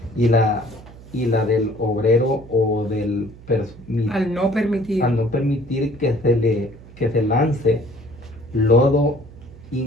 y la del obrero o del al no permitir al no permitir que se lance lodo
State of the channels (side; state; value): right; noise; hum, 19 dB below the sound